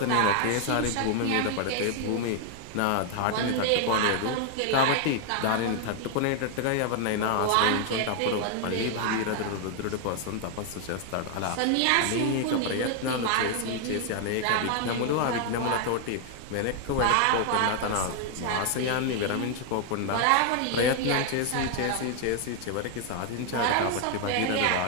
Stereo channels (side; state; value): both; different; correlation 0.00